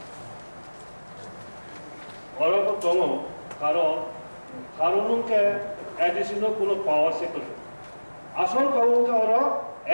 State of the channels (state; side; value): inverted; both; correlation -1.00